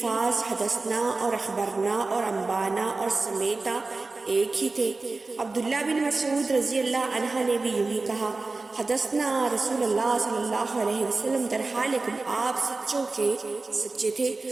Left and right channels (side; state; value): left; quieter; 3.6 dB